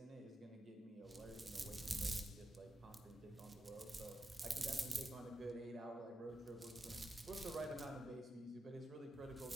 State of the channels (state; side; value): normal; both; correlation 0.87